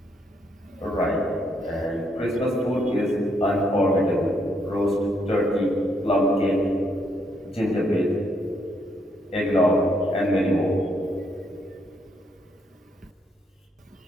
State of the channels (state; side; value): normal; both; correlation 0.74